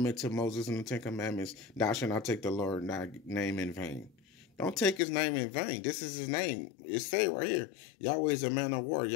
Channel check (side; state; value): right; drops out; at 5.0 s